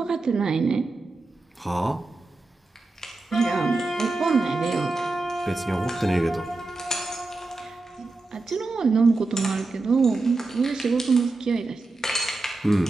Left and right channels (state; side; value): quieter; left; 3.3 dB